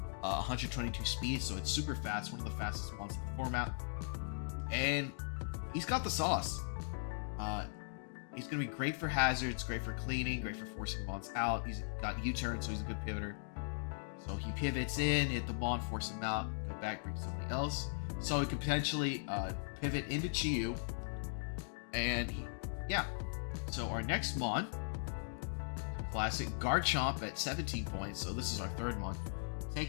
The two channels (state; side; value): silent; right; digital silence